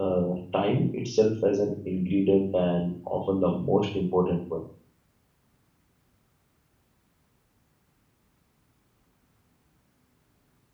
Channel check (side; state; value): both; identical; correlation 1.00